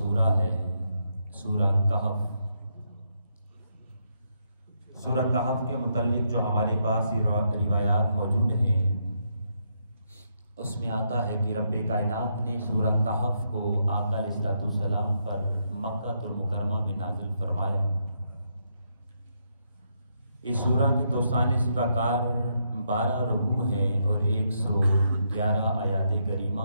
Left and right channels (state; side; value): inverted; both; correlation -0.78